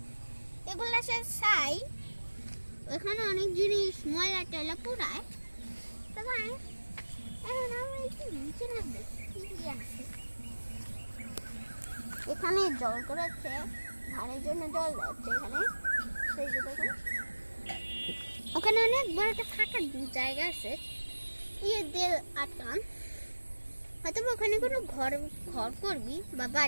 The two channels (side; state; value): both; inverted; correlation -1.00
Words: এগুলা সে ছাই। ওখানে অনেক জিনিস ময়লা টয়লা পুরায়। তো গাইস এখন আমরা একটু নিচে নামবো, কি আছে এখানে জল করেছে, ধানের জন্য জল যাচ্ছে এখানে। সেই যে দেখুন ওখানে অনেক বড় একটা ফাঁকা জায়গা আছে, ইয়ে দিয়ে আটকান। হয়তো ওখানে কোনো ঘর করবি বা